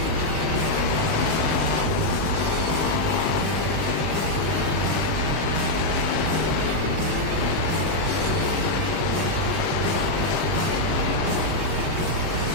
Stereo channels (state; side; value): late; left; 19 ms